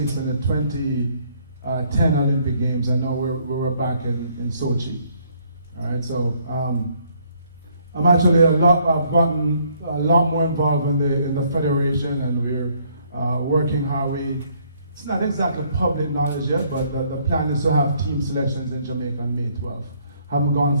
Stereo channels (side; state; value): both; inverted; correlation -0.66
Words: and the 2010 Olympic Games, and now we were back in Sochi. All right, so I'm actually I've gotten a lot more involved in the federation, and we're working how it's not exactly public knowledge yet, but the plan is to have team selections in Jamaica on May 12th. Haven't gone